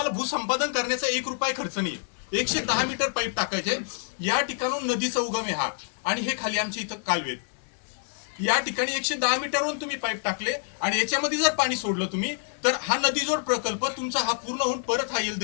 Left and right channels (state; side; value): silent; right; 60 dB below the other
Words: भूसंपादन करण्याचा 1 रुपया खर्च नाही. 110 मीटर पाईप टाकायचे. या ठिकाणून नदीचा उगम आहे हा, आणि हे खाली आमच्या इथं कालवेत. या ठिकाणी 110 मीटरवरून तुम्ही पाईप टाकले आणि याच्यामध्ये जर पाणी सोडलं तुम्ही, तर हा नदीजोड प्रकल्प तुमचा हा पूर्ण होऊन परत हा